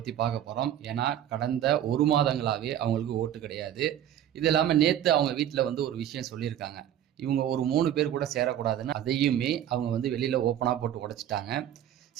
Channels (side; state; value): left; quieter; 10.9 dB